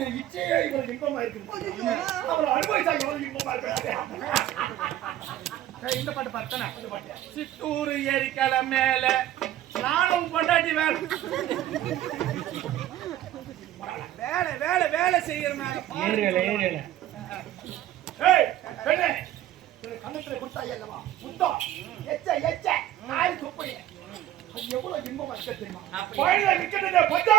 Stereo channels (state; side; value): quieter; left; 12.8 dB